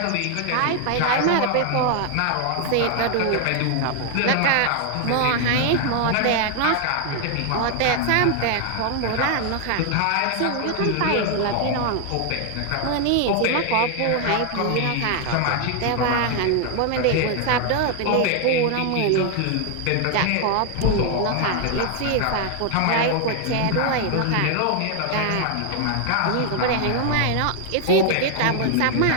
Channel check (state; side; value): different; both; correlation 0.00